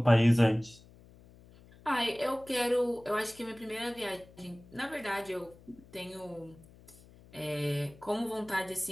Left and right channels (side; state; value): left; noise; hum, 23 dB below the sound